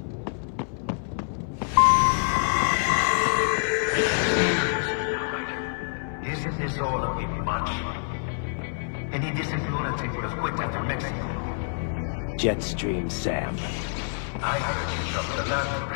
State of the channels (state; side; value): silent; right; 60 dB below the other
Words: Isn't this all a bit much? Any decent lunatic would have quit after Mexico. Jetstream Sam. I heard you chopped the land